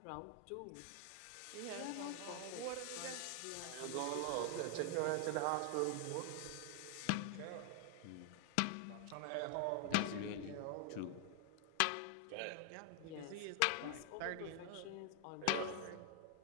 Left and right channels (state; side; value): different; both; correlation 0.00